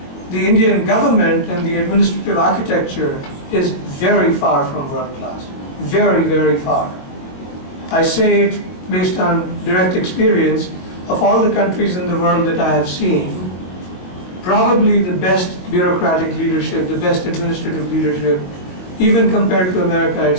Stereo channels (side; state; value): right; late; 22 ms